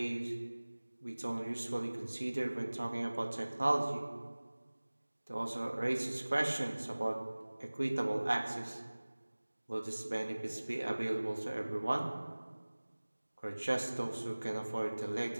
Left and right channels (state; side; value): inverted; both; correlation -1.00